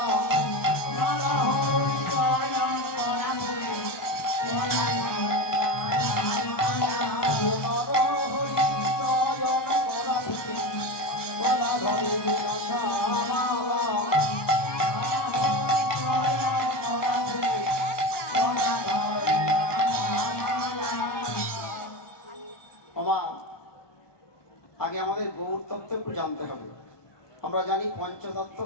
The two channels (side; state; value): right; late; 1.2 ms